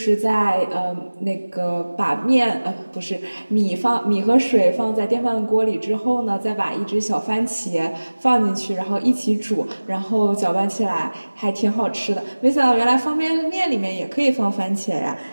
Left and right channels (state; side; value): inverted; both; correlation -1.00